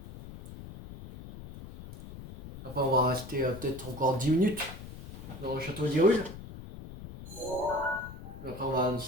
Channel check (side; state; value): left; noise; rumble, 13 dB below the sound